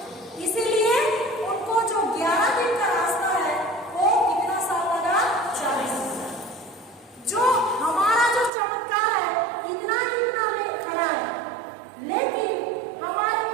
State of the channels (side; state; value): left; drops out; at 8.5 s